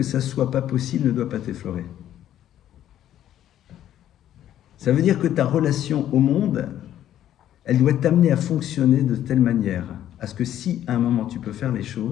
ça ne soit pas possible ne doit pas t'effleurer. Ça veut dire que ta relation au monde, elle doit t'amener à fonctionner de telle manière à ce que si à un moment tu peux faire les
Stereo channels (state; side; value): quieter; right; 11.6 dB